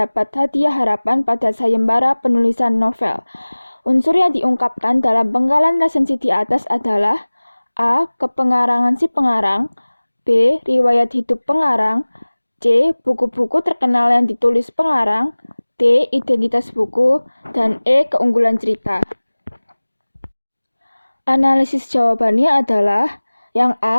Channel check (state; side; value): inverted; both; correlation -1.00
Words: hadiah harapan pada sayembara penulisan novel. Unsur yang diungkapkan dalam penggalan resensi di atas adalah A. Kepengarangan si pengarang, B. Riwayat hidup pengarang, C. Buku-buku terkenal yang ditulis pengarang, D. Identitas buku, dan E. Keunggulan cerita. Analisis jawabannya adalah yang